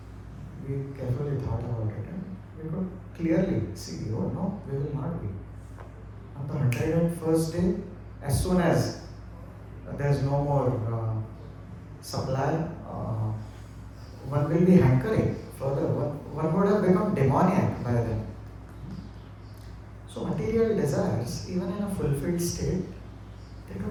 We carefully thought about it and we could clearly see, oh no, we will not be. On the 101st day, as soon as there is no more supply, one will be hankering further. One would have become demoniac by then. So material desires, even in a fulfilled state, they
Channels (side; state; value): both; identical; correlation 1.00